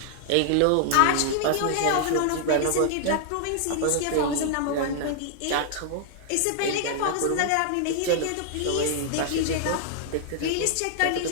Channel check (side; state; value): both; different; correlation -0.01